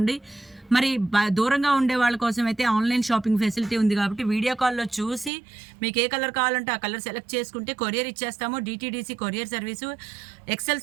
మరి దూరంగా ఉండే వాళ్ళ కోసం అయితే ఆన్‌లైన్ షాపింగ్ ఫెసిలిటీ ఉంది కాబట్టి వీడియో కాల్‌లో చూసి మీకు ఏ కలర్ కావాలంటే ఆ కలర్ సెలెక్ట్ చేసుకుంటే కొరియర్ ఇచ్చేస్తాము. DTDC courier service,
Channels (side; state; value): left; drops out; at 5.3 s